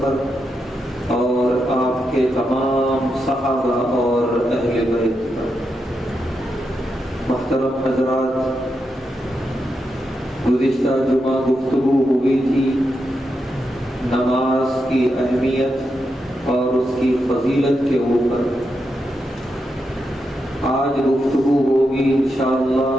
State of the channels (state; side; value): normal; both; correlation 0.85